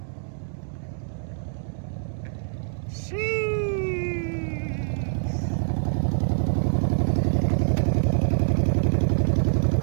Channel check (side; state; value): left; silent; digital silence